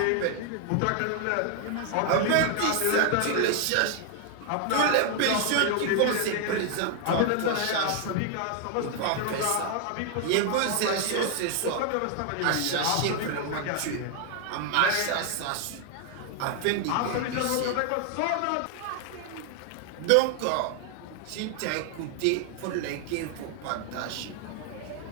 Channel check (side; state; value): both; different; correlation 0.00